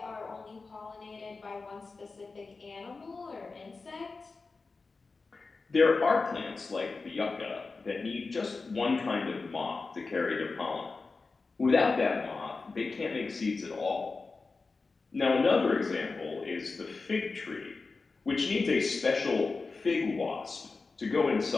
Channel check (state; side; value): quieter; right; 4.1 dB